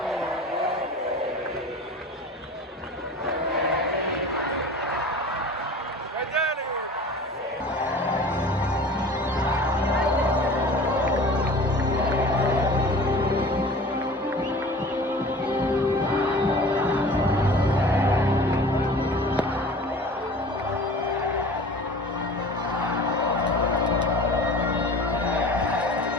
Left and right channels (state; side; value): normal; both; correlation 0.41